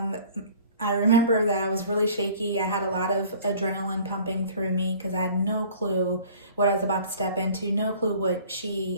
I remember that I was really shaky. I had a lot of adrenaline pumping through me because I had no clue what I was about to step into, no clue what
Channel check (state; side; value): inverted; both; correlation -0.49